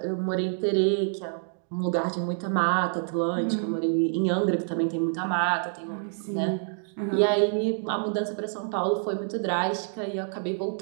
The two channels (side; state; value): left; silent; digital silence